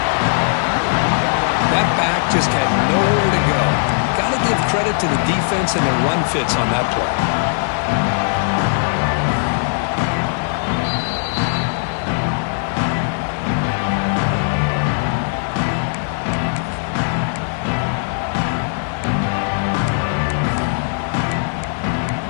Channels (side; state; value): right; silent; digital silence